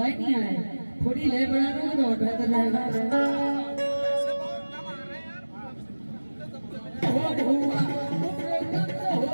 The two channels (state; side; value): inverted; both; correlation -1.00